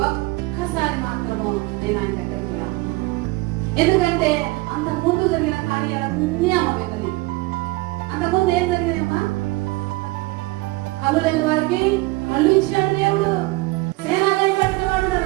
ఒక్కసారి మాత్రము నేను ఆయన దగ్గరికి రా. ఎందుకంటే అంత ముందు జరిగిన కార్యాలన్నీ అమ్మ విన్నది. అంతకుముందు ఏం జరిగినాయమ్మా? కళ్ళు లేని వారికి కళ్ళు ఇచ్చాడు దేవుడు. సేనాలయం పట్టిన వాడు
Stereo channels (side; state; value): left; quieter; 22.2 dB